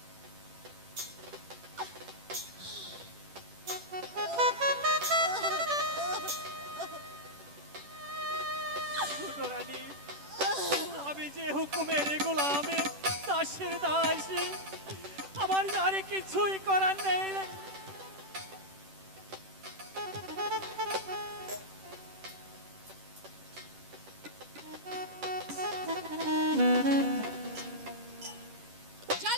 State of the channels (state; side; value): late; left; 10 ms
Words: ছোট রানী, আমি যে হুকুমের গোলামে দাসের দাসী, আমার আর কিছুই করার নেই।